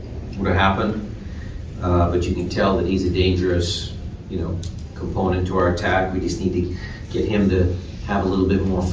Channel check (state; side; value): identical; both; correlation 1.00